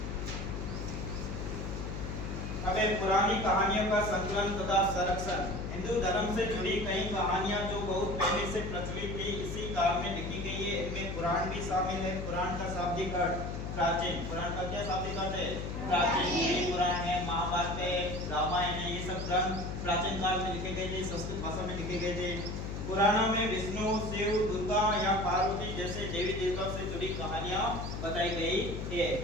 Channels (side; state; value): left; noise; hum, 5 dB below the sound